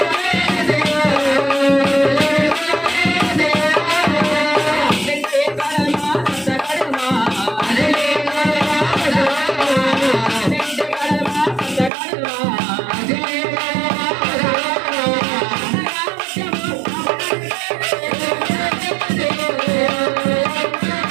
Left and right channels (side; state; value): left; drops out; at 11.9 s